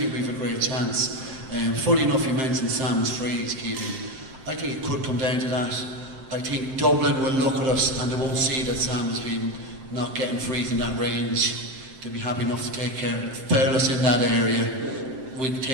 we've a great chance. Funny enough, you mentioned Sam's freeze, Keegan. I think it could come down to that. I think Dublin will look at us and they won't see that Sam has been not getting frees in that range. They'll be happy enough to take care, foul us in that area. We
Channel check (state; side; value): late; left; 7.7 ms